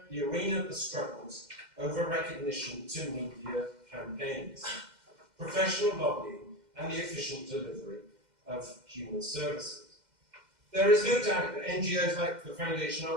arena of the struggles over recognition to media campaigns, professional lobbying, and the efficient delivery of human services. There is no doubt that NGOs like the Foundation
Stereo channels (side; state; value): left; late; 2.1 ms